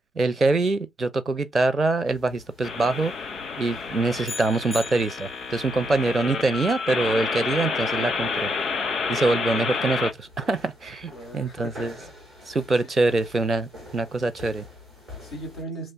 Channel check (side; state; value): both; normal; correlation 0.80